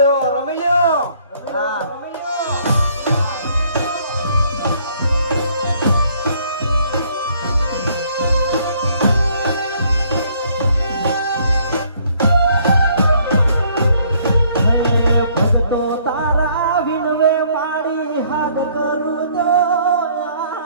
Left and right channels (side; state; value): both; inverted; correlation -0.63